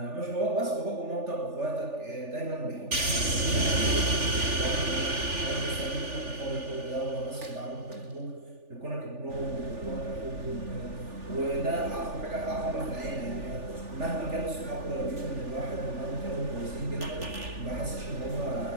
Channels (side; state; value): left; late; 3.4 ms